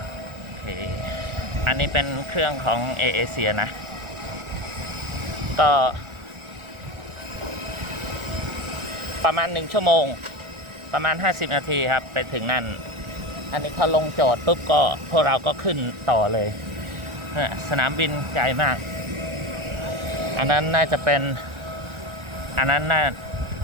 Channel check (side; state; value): left; late; 1.4 ms